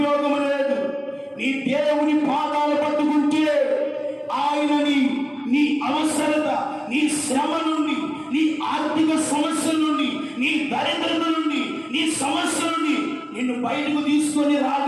లేదు. నీ దేవుని పాదాలు పట్టుకుంటే ఆయనని నీ అవసరత, నీ శ్రమ నుండి, నీ ఆర్థిక సమస్యల నుండి, నీ దరిద్రత నుండి, నీ సమస్య నుండి నిన్ను బయటకు తీసుకొని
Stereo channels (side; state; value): both; identical; correlation 1.00